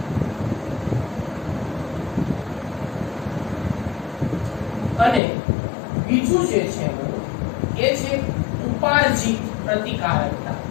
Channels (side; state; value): right; drops out; at 5.2 s